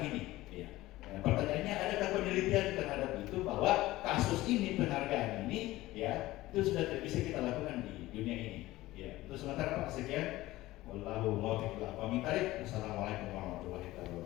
ini? Ya. Nah, pertanyaannya, adakah penelitian terhadap itu bahwa kasus ini, penghargaan ini, ya itu sudah tidak bisa kita lakukan di dunia ini? Ya, itu sementara Pak. Sekian. Wallahu muwaffiq ila aqwamit thariq. Wassalamualaikum warahmatullahi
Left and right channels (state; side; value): quieter; right; 17.5 dB